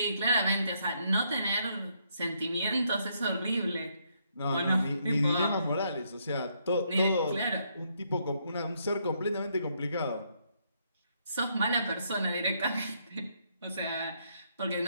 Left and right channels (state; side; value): inverted; both; correlation -0.74